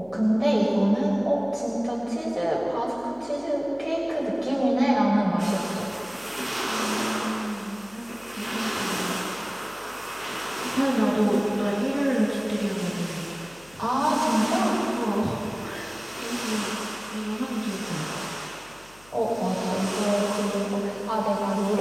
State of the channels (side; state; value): left; noise; hum, 26 dB below the sound